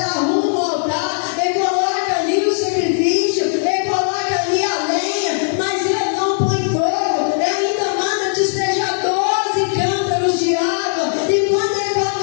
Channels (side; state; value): right; silent; digital silence